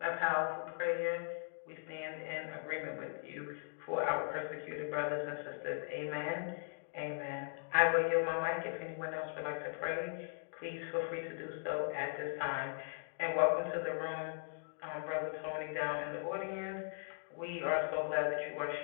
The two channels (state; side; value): silent; right; digital silence